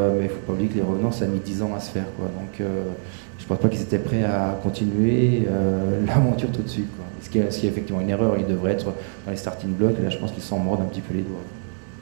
mais il ne faut pas oublier que les Revenants, ça a mis 10 ans à se faire, quoi. Donc je ne pense pas qu'ils étaient prêts à continuer l'aventure tout de suite, quoi. Ce qui est effectivement une erreur, ils devraient être dans les starting blocks, et là je pense qu'ils s'en mordent un petit peu les doigts.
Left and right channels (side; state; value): left; silent; digital silence